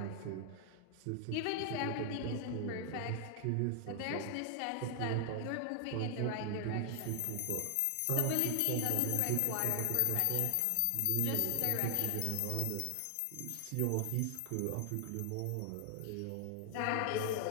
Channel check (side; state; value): both; different; correlation 0.00